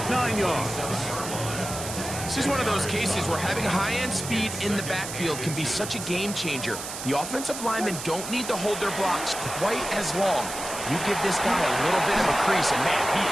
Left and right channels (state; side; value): noise; right; hiss, 8 dB below the sound